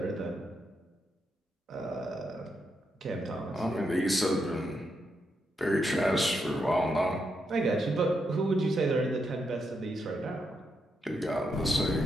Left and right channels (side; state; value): both; normal; correlation 0.81